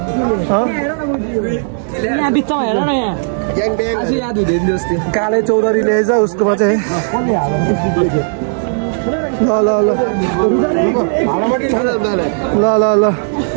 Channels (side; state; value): left; silent; digital silence